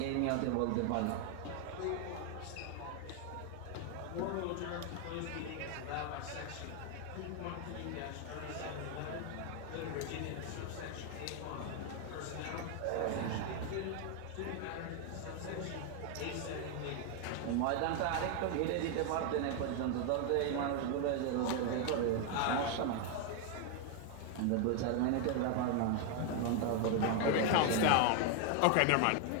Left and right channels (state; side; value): different; both; correlation 0.01